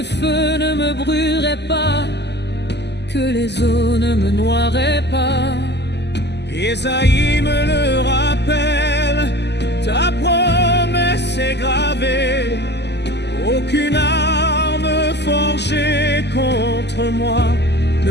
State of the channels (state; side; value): late; right; 0.50 ms